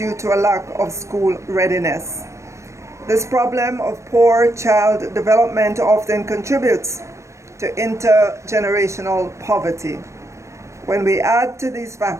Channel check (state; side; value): late; left; 0.14 ms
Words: to a lack of school readiness. This problem of poor child development often contributes to intergenerational poverty. When we add to these